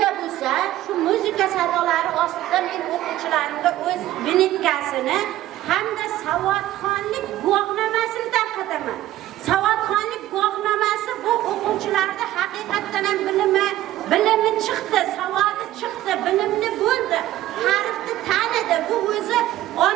bo'lsa, shu muzika sadolari ostida men o'quvchilarimga o'z binitkasini hamda savodxonlik guvohnomasini tarqataman. Savodxonlik guvohnomasi bu o'quvchilarda haqiqatan ham bilimi chiqdi, savodi chiqdi, bilimli bo'ldi, harfni tanidi. Bu o'zi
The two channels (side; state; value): left; quieter; 14.5 dB